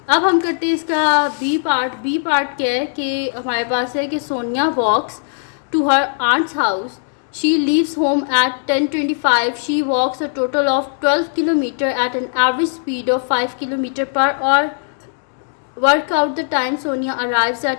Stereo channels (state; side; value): silent; right; digital silence